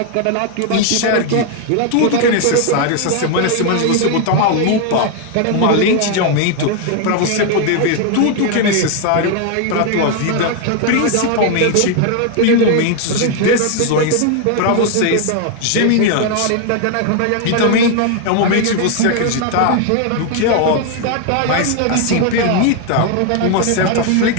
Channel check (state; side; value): different; both; correlation 0.00